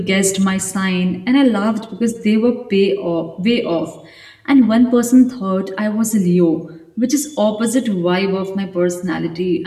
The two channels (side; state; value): both; identical; correlation 1.00